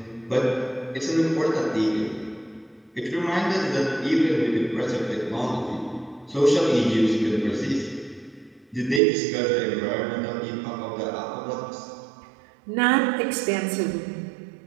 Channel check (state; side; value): drops out; left; at 9.0 s